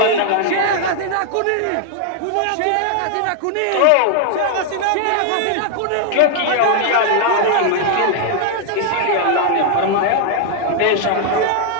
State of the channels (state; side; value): different; both; correlation 0.00